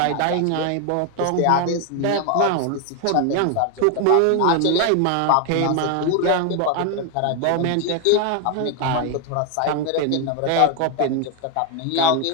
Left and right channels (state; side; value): different; both; correlation 0.01